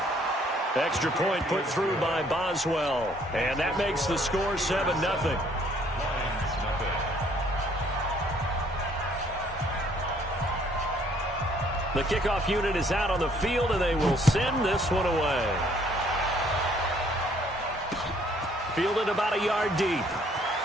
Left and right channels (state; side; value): normal; both; correlation 0.63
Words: Extra point put through by Boswell. And that makes the score 7-0. The kickoff unit is out on the field, and they will send this one away. Fielded about a yard deep.